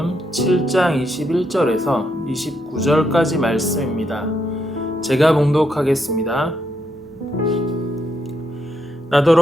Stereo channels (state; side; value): normal; both; correlation 0.78